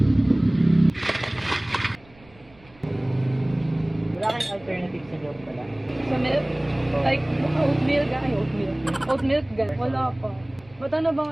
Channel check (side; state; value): right; noise; rumble, 26 dB below the sound